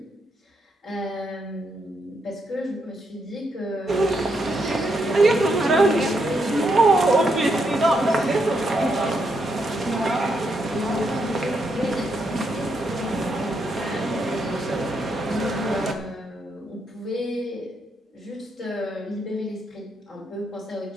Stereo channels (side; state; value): both; normal; correlation 0.79